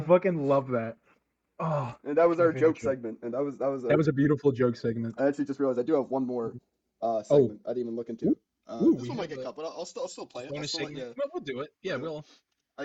love that. Oh, And that was our favorite joke segment. And that was a beautiful joke segment. I actually just realized I do have one more segment I didn't even look into. This one might get cut, but I'll still play it. Bonus segment. Well, we'll do it. Yeah, we'll.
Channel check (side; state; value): both; identical; correlation 1.00